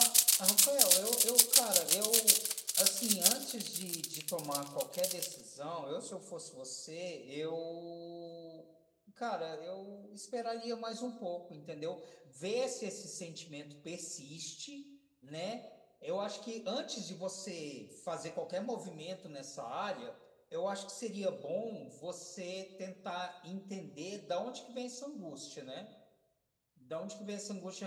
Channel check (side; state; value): both; identical; correlation 1.00